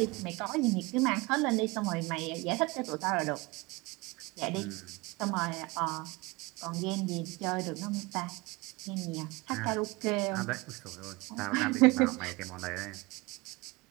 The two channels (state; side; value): quieter; left; 24.2 dB